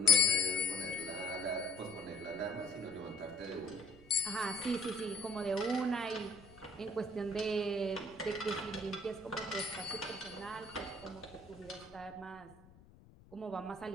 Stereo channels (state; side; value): noise; left; rumble, 23 dB below the sound